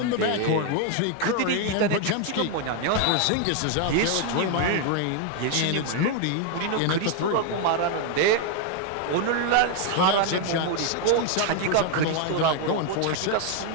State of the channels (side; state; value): both; different; correlation 0.01